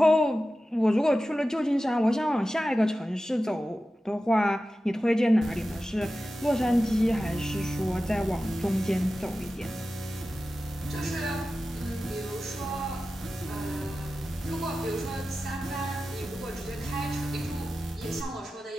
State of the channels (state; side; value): normal; both; correlation 0.94